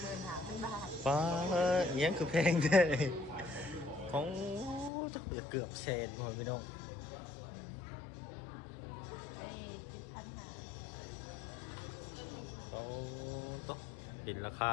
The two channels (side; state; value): right; drops out; at 4.9 s